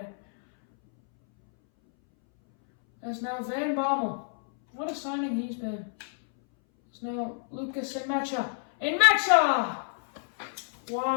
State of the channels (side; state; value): right; silent; 59 dB below the other